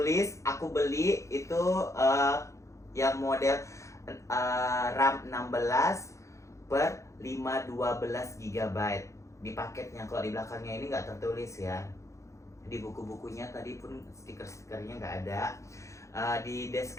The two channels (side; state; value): right; late; 0.15 ms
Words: aku beli itu yang model RAM 16/512 GB di paketnya. Kalau di belakangnya ini nggak tertulis ya. Di buku-bukunya tadi pun stiker-stikernya nggak ada. Di